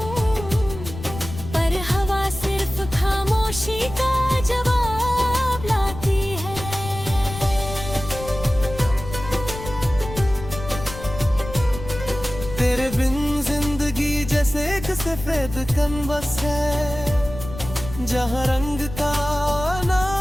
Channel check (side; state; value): left; noise; rumble, 11 dB below the sound